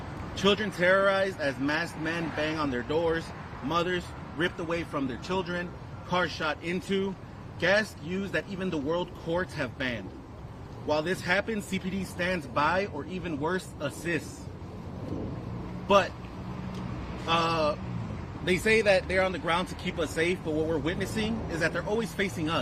Children terrorized as masked men bang on their doors, mothers ripped away from their children, cars shot into, gas used that even the world courts have banned. While this happens, CPD stands by, or even worse, assists. But they say that they're on the ground to keep us safe, but what we're witnessing is that they're always facing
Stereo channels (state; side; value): identical; both; correlation 1.00